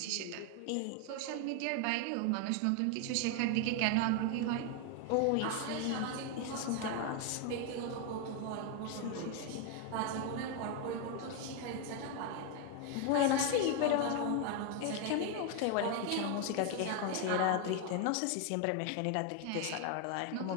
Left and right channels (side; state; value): both; different; correlation 0.01